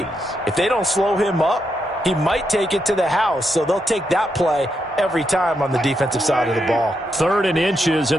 If they don't slow him up, he might take it to the house, so they'll take that play every time on the defensive side of the ball. 3rd and inches,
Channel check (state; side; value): normal; both; correlation 0.82